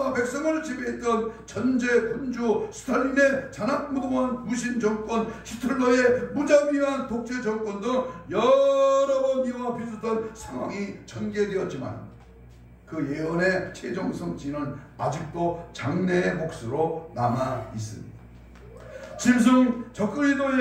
백성을 지배했던 전제 군주, 스탈린의 잔악무도한 무신 정권, 히틀러의 무자비한 독재 정권 등 여러 번 이와 비슷한 상황이 전개되었지만 그 예언의 최종 성취는 아직도 장래의 몫으로 남아 있습니다. 짐승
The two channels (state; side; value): identical; both; correlation 1.00